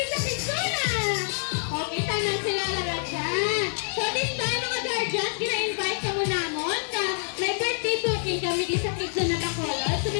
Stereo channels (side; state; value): right; silent; digital silence